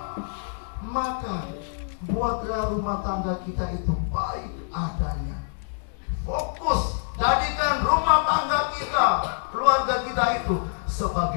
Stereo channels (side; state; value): right; silent; digital silence